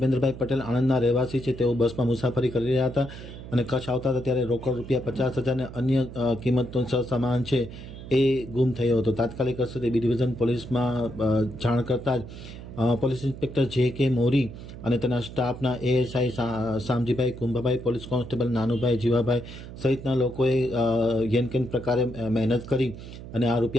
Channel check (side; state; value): right; noise; hum, 13 dB below the sound